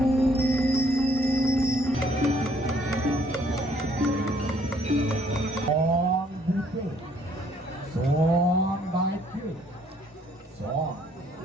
on buku son baik son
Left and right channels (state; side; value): normal; both; correlation 0.64